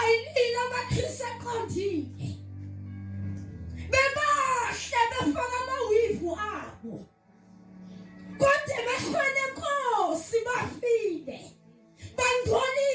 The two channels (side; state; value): both; identical; correlation 1.00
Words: amakhrisi aqondile, bebahle befaka amawivu abo, kodwa emehlweni eNkosi bafile,